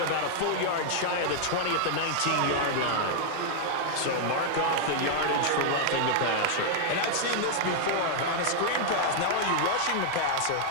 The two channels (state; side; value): different; both; correlation -0.01